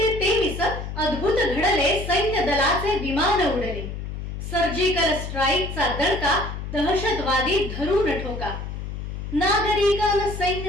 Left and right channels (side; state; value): left; noise; hum, 7 dB below the sound